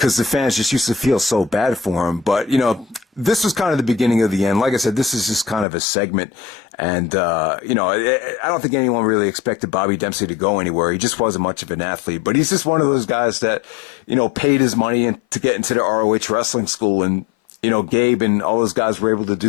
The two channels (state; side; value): drops out; right; at 5.7 s